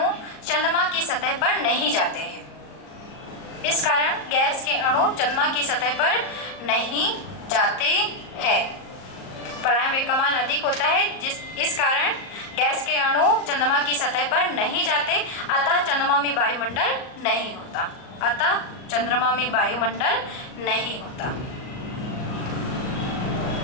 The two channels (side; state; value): right; late; 38 ms